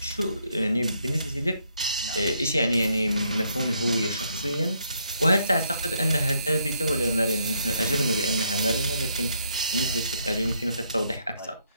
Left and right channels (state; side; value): inverted; both; correlation -0.73